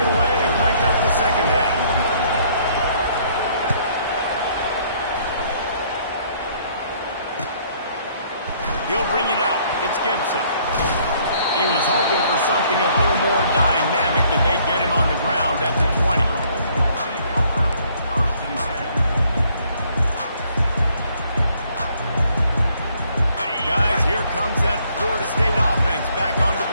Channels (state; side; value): inverted; both; correlation -0.64